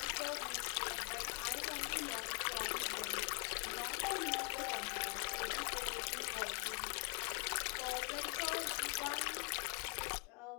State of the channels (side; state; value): right; quieter; 34.6 dB